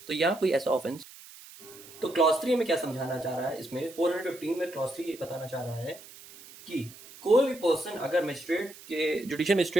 तो यहाँ कोई ऐसा ऑफेंस, तो क्लॉज 3 में क्या समझाना चाह रहा है? इसमें 415 में क्लॉज 3 ये बताना चाह रहा है कि कोई भी पर्सन अगर मजिस्ट्रेट के जुडिशियल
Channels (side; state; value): right; noise; hiss, 19 dB below the sound